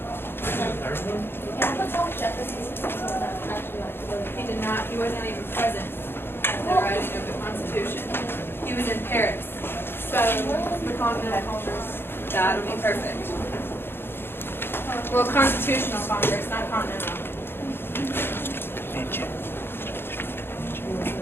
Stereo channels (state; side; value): late; right; 0.11 ms